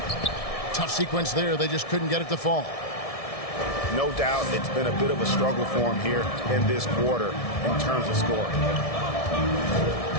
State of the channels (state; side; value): late; right; 1.7 ms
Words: Tough sequence there. They just couldn't get it to fall. No doubt it's been a bit of a struggle for him here in this quarter in terms of scoring.